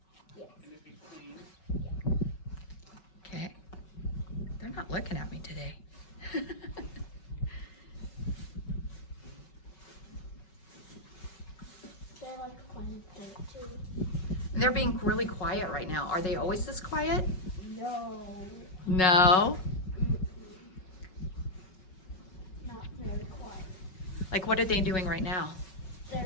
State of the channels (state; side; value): late; right; 5.5 ms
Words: Okay. They're not looking at me today. They like playing with it too. They're being really quiet right now. Are they always this quiet? No. No. Not very quiet. Like, what are they doing right now? They're